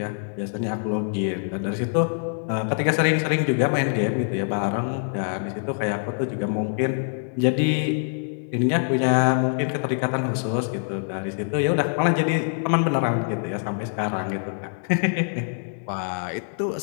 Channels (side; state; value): right; silent; digital silence